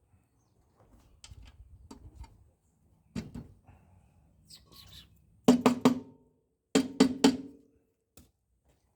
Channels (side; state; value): both; identical; correlation 1.00